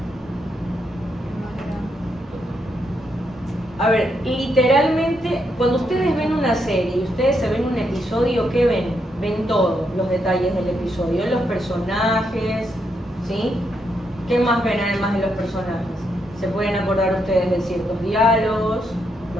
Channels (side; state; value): both; normal; correlation 0.79